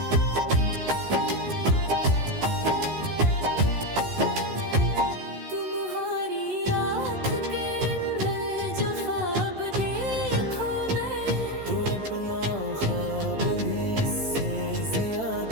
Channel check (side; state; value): left; late; 14 ms